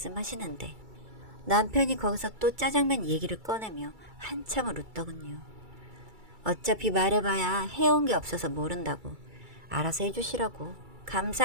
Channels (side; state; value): left; late; 2.3 ms